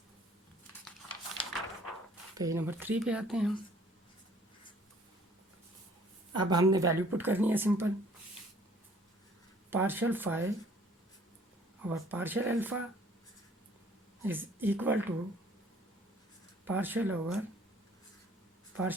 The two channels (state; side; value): normal; both; correlation 0.57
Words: पेज नंबर 3 पे आते हैं हम। अब हमने वैल्यू पुट करनी है सिंपल, पार्शियल फाई और partial alpha is equal to partial over